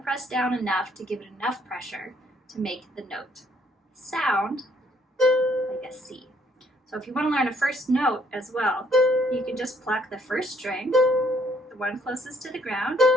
down enough to give it enough pressure to make the note sound like a C. So if you want to learn a first note as well, you can just pluck the 1st string, the one closest to the ground,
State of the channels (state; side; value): normal; both; correlation 0.67